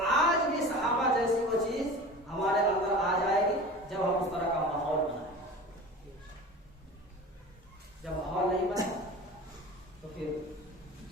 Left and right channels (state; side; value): normal; both; correlation 0.36